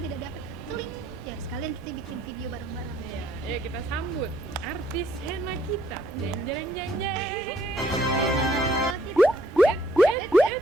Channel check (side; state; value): both; normal; correlation 0.65